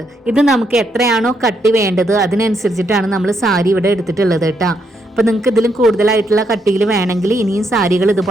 ഇത് നമുക്ക് എത്രയാണോ കട്ടി വേണ്ടത് അതിനനുസരിച്ചിട്ടാണ് നമ്മൾ സാരി ഇവിടെ എടുത്തിട്ടുള്ളത് കേട്ടോ. അപ്പോൾ നിങ്ങൾക്ക് ഇതിലും കൂടുതലായിട്ടുള്ള കട്ടിയിൽ വേണമെങ്കിൽ ഇനിയും സാരികൾ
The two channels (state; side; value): normal; both; correlation 0.77